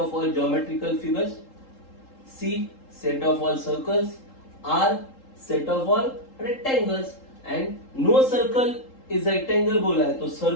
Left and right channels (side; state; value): right; late; 3.8 ms